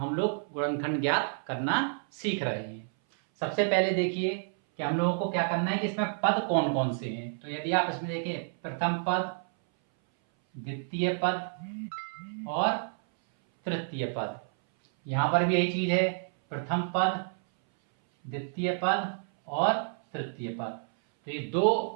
लोग गुणनखंड ज्ञात करना सीख रहे हैं। सबसे पहले देखिए कि हम लोगों को क्या करना है कि इसमें पद कौन कौन से हैं। तो यदि आप इसमें देखिए प्रथम पद, द्वितीय पद और तृतीय पद, यहां पर भी यही चीज है, प्रथम पद, द्वितीय पद और तृतीय पद। तो ये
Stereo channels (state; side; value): silent; left; 58 dB below the other